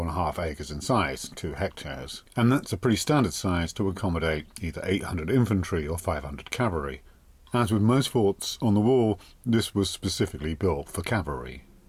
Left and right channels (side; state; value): both; identical; correlation 1.00